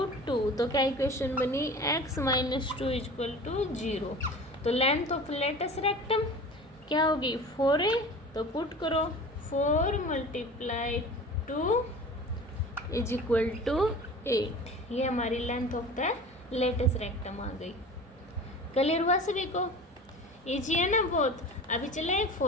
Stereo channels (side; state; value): both; normal; correlation 0.38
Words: 2। तो क्या इक्वेशन बनी, x - 2 इज इक्वल टू 0। तो लेंथ ऑफ लेटेस्ट रेक्टम क्या होगी 4a, तो पुट करो 4 मल्टीप्लाई 2 इज इक्वल टू 8। ये हमारी length of the latus rectum आ गई। क्लियर हुआ सभी को, इजी है ना बहुत। अभी चले